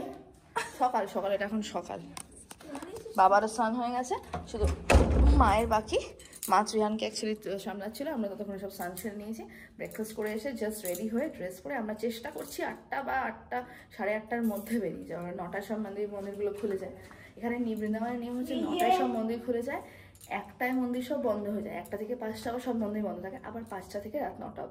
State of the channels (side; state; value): both; identical; correlation 1.00